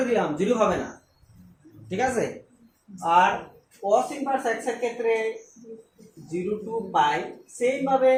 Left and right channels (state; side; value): identical; both; correlation 1.00